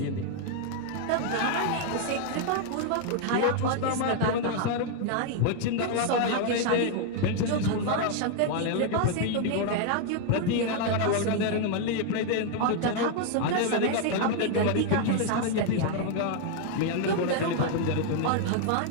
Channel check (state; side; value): different; both; correlation 0.00